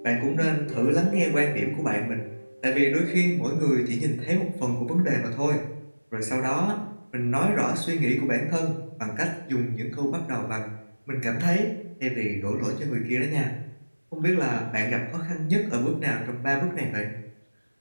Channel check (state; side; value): inverted; both; correlation -1.00